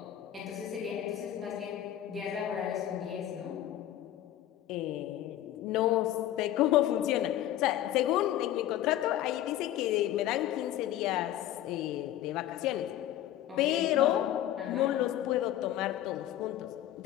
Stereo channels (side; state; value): right; quieter; 12.7 dB